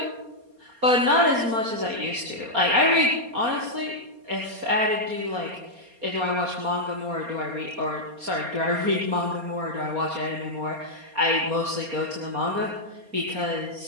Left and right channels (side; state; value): left; late; 4.3 ms